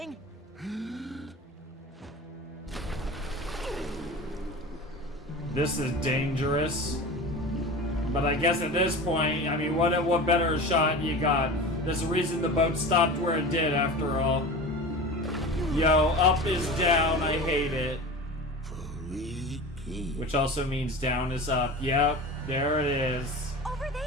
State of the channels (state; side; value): normal; both; correlation 0.32